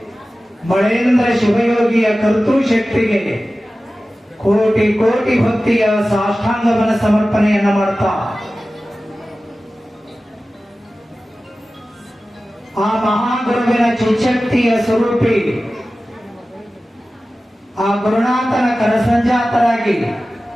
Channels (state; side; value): normal; both; correlation 0.96